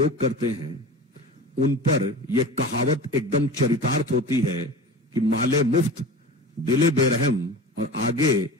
करते हैं, उन पर यह कहावत एकदम चरितार्थ होती है कि माले मुफ्त दिले बेरहम। और आगे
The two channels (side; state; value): both; normal; correlation 0.33